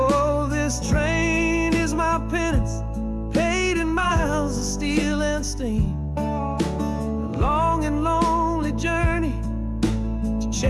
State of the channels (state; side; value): identical; both; correlation 1.00